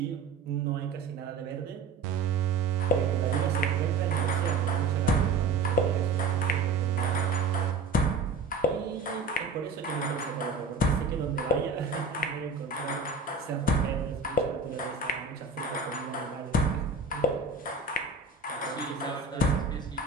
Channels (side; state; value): left; quieter; 3.7 dB